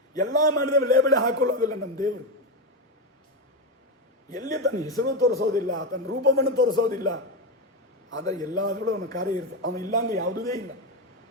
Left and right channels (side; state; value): both; normal; correlation 0.11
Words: ಎಲ್ಲ ಮಾಡಿದ ಲೇಬಲೇ ಹಾಕೊಳ್ಳೋದಿಲ್ಲ ನಮ್ಮ ದೇವರು. ಎಲ್ಲಿ ತನ್ನ ಹೆಸರು ತೋರಿಸೋದಿಲ್ಲ, ತನ್ನ ರೂಪವನ್ನು ತೋರಿಸೋದಿಲ್ಲ. ಆದರೆ ಎಲ್ಲಾದರೂ ಅವನ ಕಾರ್ಯ ಇರ್ತದೆ. ಅವನು ಇಲ್ಲಾಂದ್ರೆ ಯಾವುದೇ ಇಲ್ಲ.